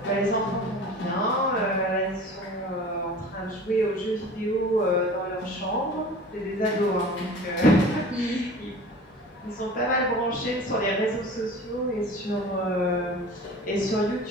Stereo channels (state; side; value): normal; both; correlation 0.40